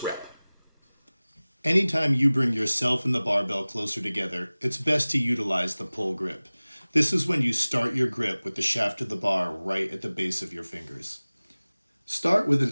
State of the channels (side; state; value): both; inverted; correlation -0.99